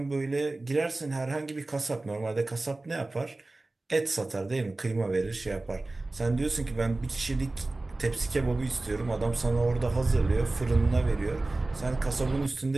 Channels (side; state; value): left; quieter; 3.0 dB